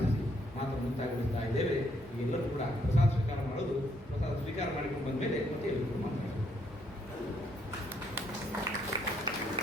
ಮಾತ್ರ ಮುಂತಾಗುತ್ತಾ ಇದ್ದೇವೆ. ಎಲ್ಲರೂ ಕೂಡ ಪ್ರಸಾದ ಸ್ವೀಕಾರ ಮಾಡೋದು, ಪ್ರಸಾದ ಸ್ವೀಕಾರ ಮಾಡಿಕೊಂಡು ಬಂದ ಮೇಲೆ ಮತ್ತೆ ಎಲ್ಲರೂ ಮಾತಾಡೋದು.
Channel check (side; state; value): both; normal; correlation 0.72